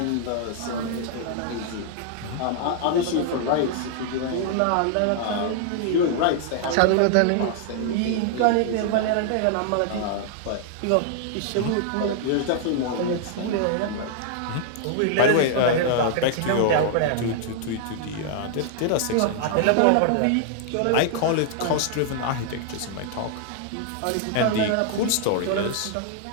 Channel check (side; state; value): both; different; correlation -0.01